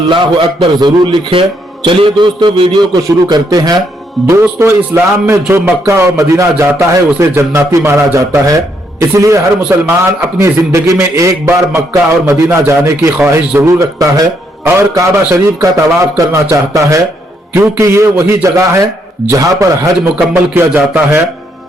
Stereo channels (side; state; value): both; normal; correlation 0.74